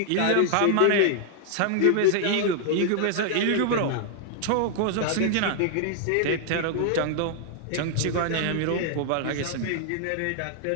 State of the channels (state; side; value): different; both; correlation 0.00